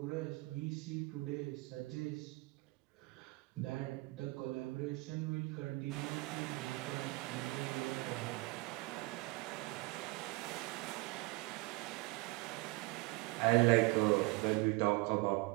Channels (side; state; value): left; quieter; 23.5 dB